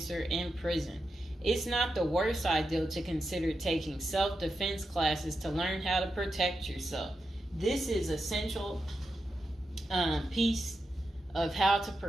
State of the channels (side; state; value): both; normal; correlation 0.87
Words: in prison. It's not the worst idea to consider taking self-defense classes to learn how to protect yourself. This is essential piece of how to